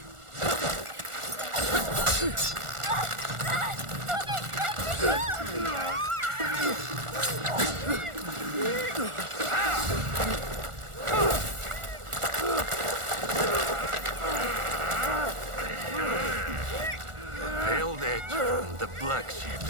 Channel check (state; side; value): late; left; 1.4 ms